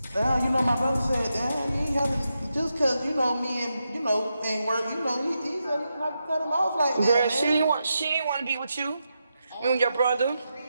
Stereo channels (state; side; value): inverted; both; correlation -0.86